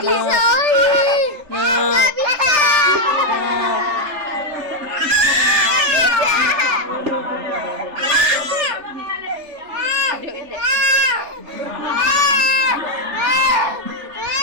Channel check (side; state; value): left; late; 3.3 ms